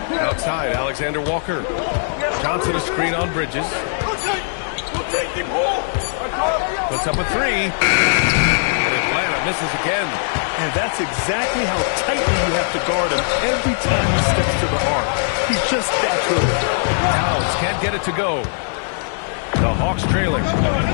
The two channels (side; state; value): right; silent; 64 dB below the other